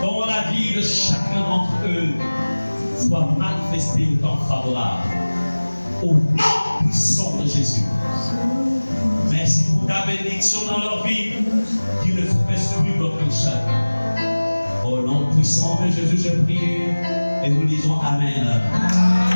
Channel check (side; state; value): both; inverted; correlation -1.00